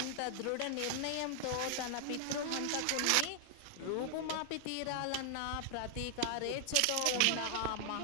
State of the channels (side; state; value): both; different; correlation 0.00